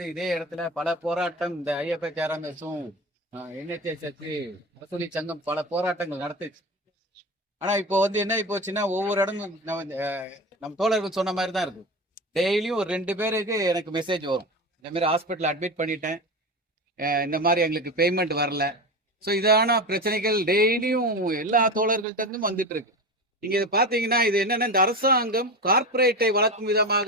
இதே இடத்துல பல போராட்டம் இந்த ஐஎஃப்எச்ஆர்எம்எஸும் NHS அரசூழியர் சங்கம் பல போராட்டங்கள் நடத்துச்சு. ஆனா இப்போ என்ன போச்சுன்னா ஒவ்வொரு இடமும் நம்ம தோழர்கள் சொன்ன மாதிரி தான் இருக்கு. டெய்லியும் ஒரு 2 பேருக்கு எனக்கு மெசேஜ் வரும், இந்த மாதிரி ஹாஸ்பிட்டல் அட்மிட் பண்ணிட்டேன், இந்த மாதிரி எங்களுக்கு பேமெண்ட் வரல. ஸோ இதான பிரச்சனைகள் டெய்லியும் எல்லா தோழர்கள்ட்ட இருந்தும் வந்துட்டு இருக்கு. நீங்க இதை பாத்தீங்கன்னா இது என்னன்னா, இந்த அரசாங்கம் கார்பரேட்டை வளர்க்கும்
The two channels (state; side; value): normal; both; correlation 0.25